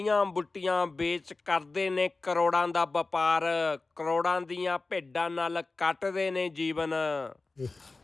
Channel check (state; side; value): quieter; right; 3.6 dB